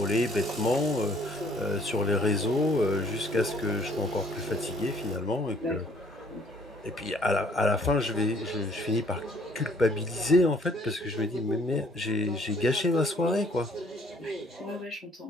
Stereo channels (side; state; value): both; normal; correlation 0.61